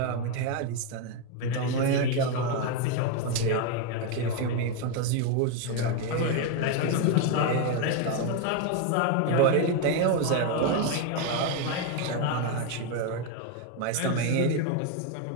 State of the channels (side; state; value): both; different; correlation 0.02